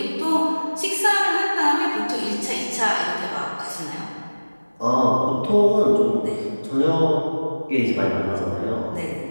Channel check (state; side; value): inverted; both; correlation -1.00